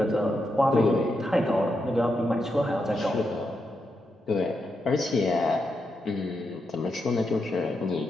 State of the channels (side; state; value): both; normal; correlation 0.84